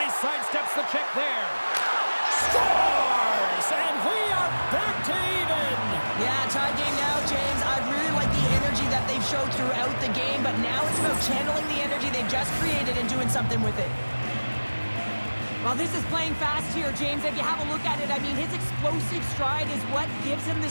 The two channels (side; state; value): both; inverted; correlation -1.00